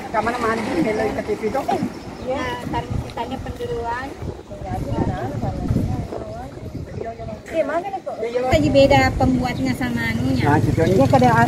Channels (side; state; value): both; identical; correlation 1.00